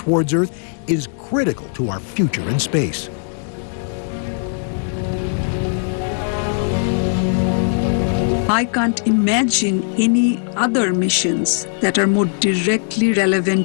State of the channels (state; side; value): silent; right; digital silence